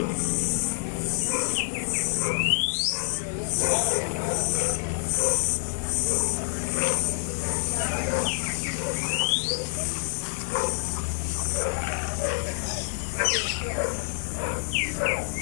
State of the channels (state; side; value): silent; right; 58 dB below the other